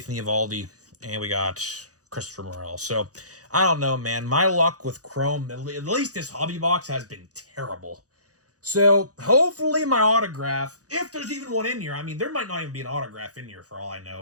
Eovaldi, and we got Christopher Morel. So I don't know, man. My luck with Chrome, at least this hobby box, has been terrible. So hopefully my autograph, if there's even one in here. I mean, there might not even be an autograph in here for all I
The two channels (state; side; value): late; left; 0.67 ms